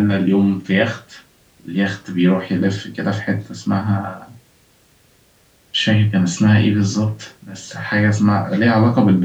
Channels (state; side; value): identical; both; correlation 1.00